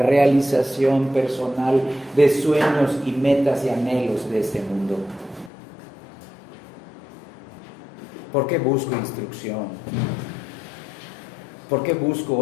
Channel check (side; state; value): right; drops out; at 5.5 s